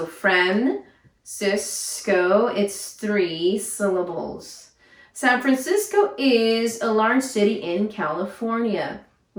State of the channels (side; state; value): both; identical; correlation 1.00